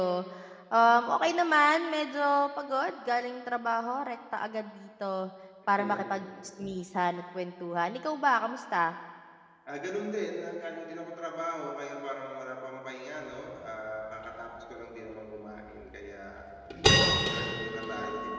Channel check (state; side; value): identical; both; correlation 1.00